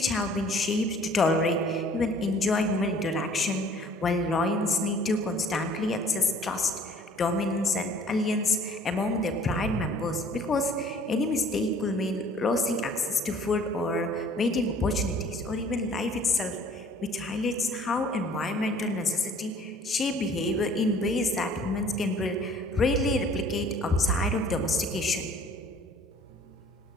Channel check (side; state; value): both; normal; correlation 0.54